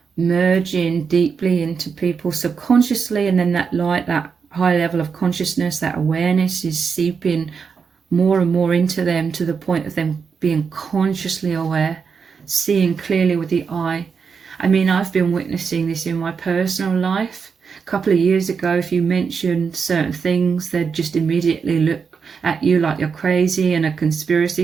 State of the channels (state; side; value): quieter; left; 5.9 dB